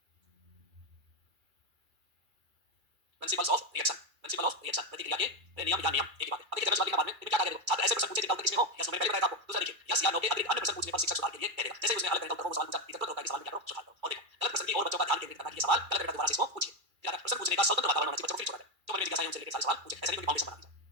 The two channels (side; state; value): left; late; 2.3 ms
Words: प्रिंसिपल्स ऑफ रिएक्शन प्रतिक्रिया के नियम या नियम एक ही बात है। अब देखिए जनरल बाद में क्या क्या करेगा? छात्र ऐसे प्रश्न पूछे जिनका उत्तर किसमें हो या मैंने पहले बताया था आपको। दूसरा देखिए यस या नो के अतिरिक्त अन्य प्रश्न पूछने पर शिक्षक सुधार के लिए कहेगा। जैसे उसने अलग तरह का उत्तर को सवाल पूछा इधर तो होता है कि सवाल में क्या करो सुधार करो। और देखो गलत प्रश्न की और बच्चों का ध्यान केंद्रित करना कि ये सवाल गलत है दोबारा से इसको पूछिए। फिर प्रश्न पूछने का स्वतंत्र वातावरण होना चाहिए बच्चों को। फिर छोड़ा जाए जो मन में जिज्ञासा है उनसे रिलेटेड सारे सवाल पूछे। ऐसा नहीं कोई फाउंडेशन बना दीजिए।